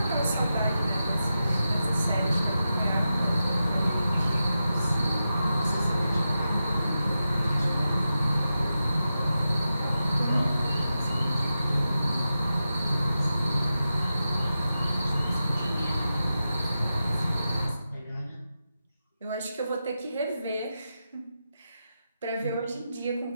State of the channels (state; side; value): inverted; both; correlation -0.90